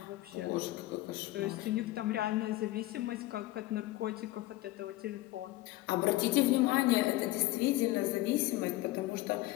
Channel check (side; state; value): right; quieter; 17.8 dB